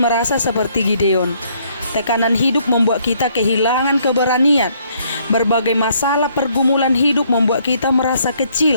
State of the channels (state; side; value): inverted; both; correlation -0.67